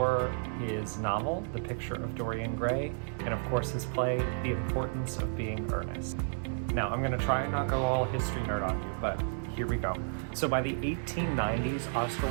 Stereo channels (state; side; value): silent; left; digital silence